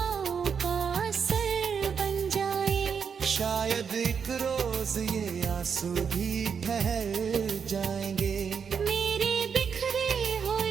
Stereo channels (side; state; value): left; quieter; 6.6 dB